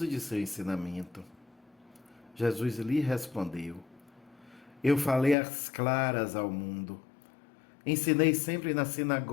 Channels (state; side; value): drops out; right; at 5.4 s